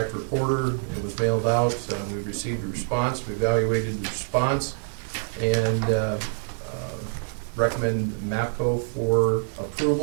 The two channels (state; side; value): silent; left; 61 dB below the other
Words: reporter, it was mailed out, we received a response, we evaluated the response, and recommend MAPCO for